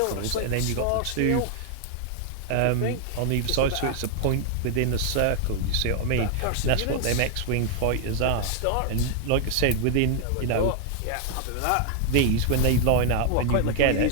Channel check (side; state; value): both; different; correlation 0.00